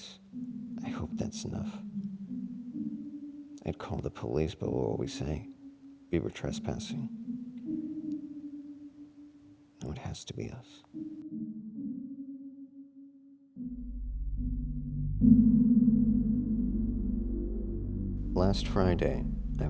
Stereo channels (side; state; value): both; identical; correlation 1.00